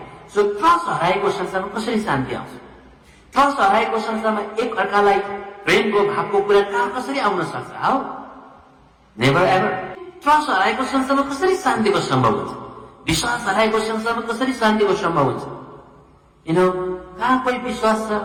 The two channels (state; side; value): identical; both; correlation 1.00